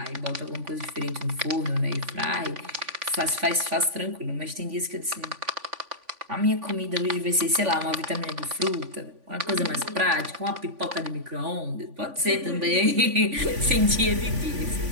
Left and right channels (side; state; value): left; late; 3.5 ms